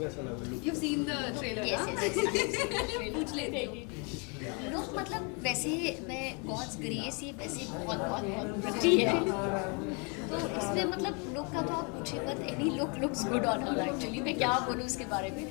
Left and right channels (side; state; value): right; quieter; 34.1 dB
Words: लगा look? You've seen the trailer, Yes, ना? yes, yes. पूछ लेती हूँ. लोग मतलब वैसे मैं गॉड्स ग्रेस ये वैसे बहुत बहुत बहुत प्रिटी है, तो इसमें मतलब लुक का तो आप पूछे मत. Any look looks good on her actually. मैं क्या बोलूँ उसके बारे में,